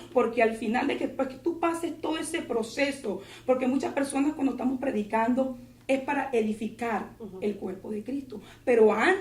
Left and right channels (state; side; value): identical; both; correlation 1.00